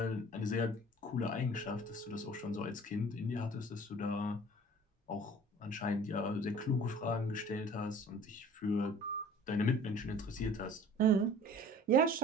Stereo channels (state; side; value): normal; both; correlation 0.47